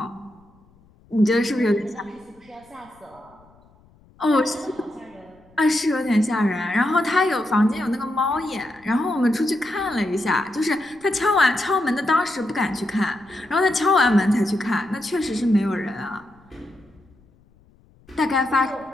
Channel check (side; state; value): left; noise; rumble, 30 dB below the sound